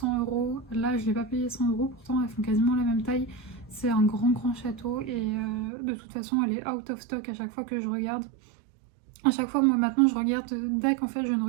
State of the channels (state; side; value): drops out; left; at 5.7 s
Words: €. Là, je ne l'ai pas payé 100 €, pourtant elles font quasiment la même taille. C'est un grand château et de toute façon, elle est out of stock à chaque fois que je regarde. À chaque fois, moi maintenant, je regarde DAC. En fait, je ne